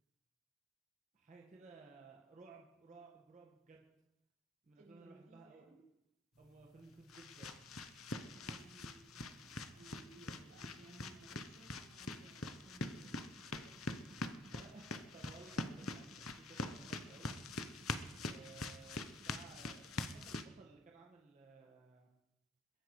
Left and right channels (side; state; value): both; normal; correlation 0.59